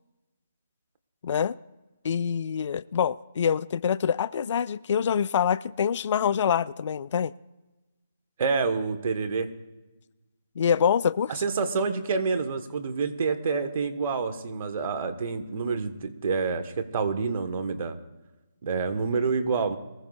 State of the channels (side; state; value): both; inverted; correlation -0.59